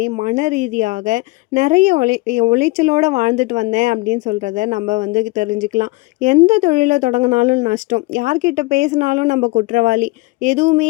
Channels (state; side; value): quieter; right; 22.9 dB